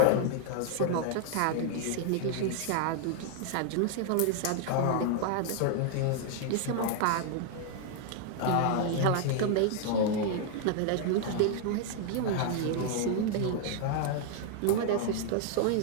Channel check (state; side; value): different; both; correlation 0.00